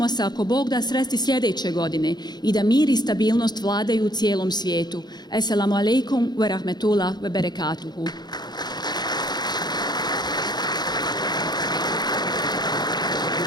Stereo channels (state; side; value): late; right; 0.20 ms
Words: se, ako Bog da, sresti sljedeće godine i da mir i stabilnost vladaju u cijelom svijetu. Assalamu alaikum wa rahmetullah wa barakatuhu.